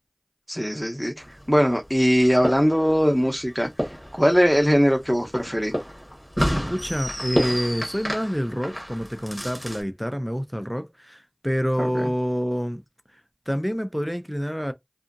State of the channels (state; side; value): identical; both; correlation 1.00